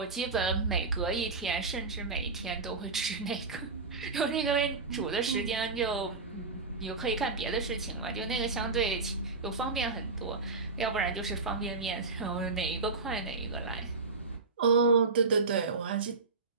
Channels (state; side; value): quieter; left; 4.0 dB